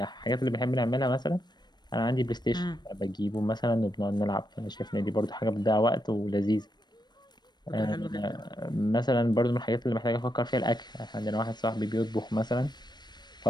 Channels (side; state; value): right; late; 0.21 ms